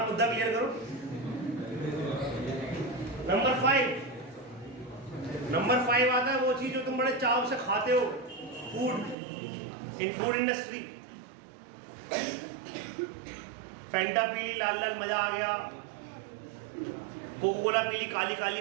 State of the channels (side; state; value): left; drops out; at 9.2 s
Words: मुद्दा क्लियर करो। नंबर 5 आता है वो चीज जो तुम बड़े चाव से खाते हो, फूड, इन फूड इंडस्ट्री। फैंटा पीली लाल लाल मजा आ गया, कोको कोला पीली काली